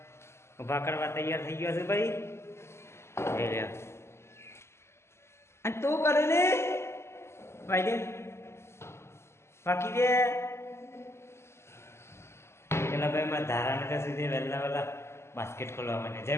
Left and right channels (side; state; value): right; late; 0.13 ms